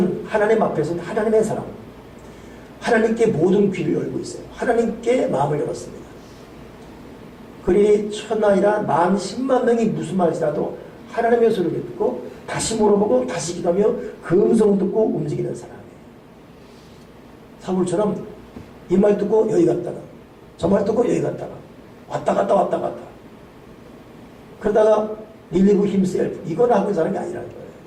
하나님 앞에서는 하나님의 사람, 하나님께 모든 귀를 열고 있어요. 하나님께 마음을 열었습니다. 그리 천하이라 10,000만 명이 무슨 말이라도 하나님의 소리를 듣고 다시 물어보고 다시 기도하며 그 음성 듣고 움직이는 사람이에요. 사울처럼 이 말 듣고 여기 갔다가 저 말 듣고 여기 갔다가 왔다 갔다 왔다 갔다 그러다가 relieve himself 이건 하고 있는 사람이 아니라는 거예요.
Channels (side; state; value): both; identical; correlation 1.00